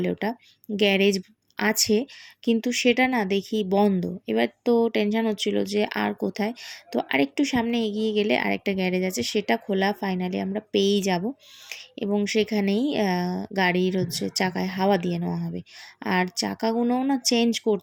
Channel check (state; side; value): identical; both; correlation 1.00